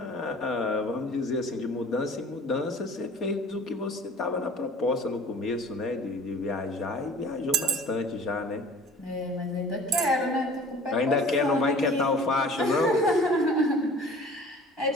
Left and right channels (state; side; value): normal; both; correlation 0.46